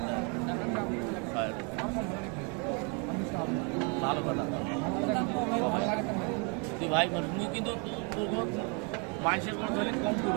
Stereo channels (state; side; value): quieter; left; 34.7 dB